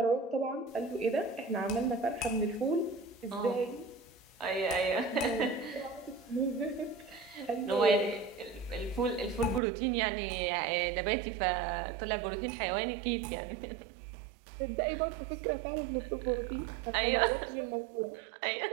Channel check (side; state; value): left; drops out; at 9.6 s